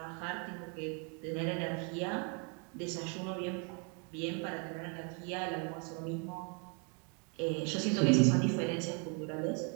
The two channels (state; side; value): quieter; left; 35.8 dB